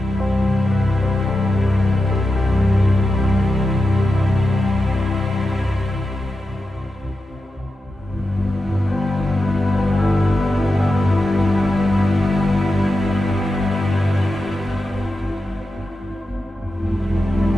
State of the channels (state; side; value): normal; both; correlation 0.90